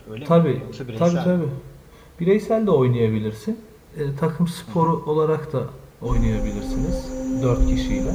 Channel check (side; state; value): both; identical; correlation 1.00